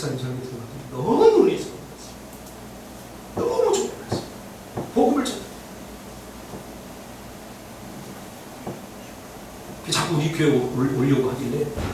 설교 들어갔더니 너무 놀라서 너무 좋았어요. 복음을 전해. 자꾸 우리 교회 오려고 하길래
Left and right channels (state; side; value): identical; both; correlation 1.00